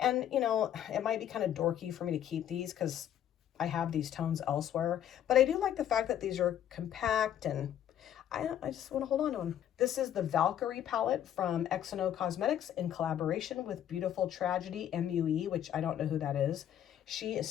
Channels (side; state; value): right; quieter; 10.5 dB